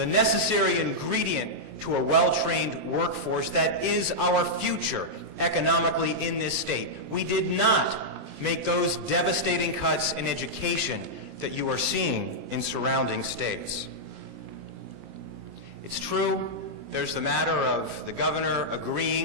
necessary ingredient to a well-trained workforce that is our future economically in this state. We did not make those devastating cuts in education that you are seeing in surrounding states. It's true, there's the matter of the governor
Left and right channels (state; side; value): late; left; 20 ms